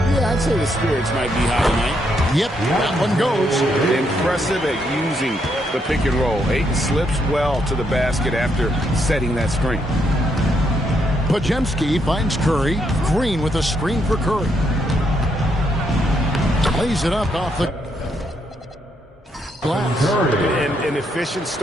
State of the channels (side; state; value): both; normal; correlation 0.76